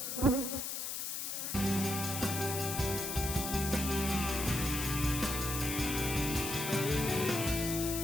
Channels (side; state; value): left; noise; hiss, 3 dB below the sound